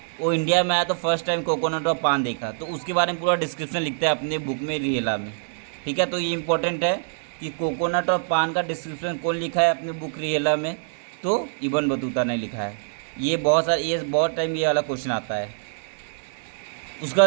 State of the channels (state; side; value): silent; left; digital silence